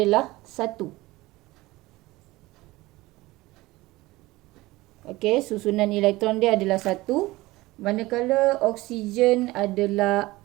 1. Okey, susunan elektron dia adalah 1. Manakala oksigen adalah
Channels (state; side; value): quieter; left; 19.7 dB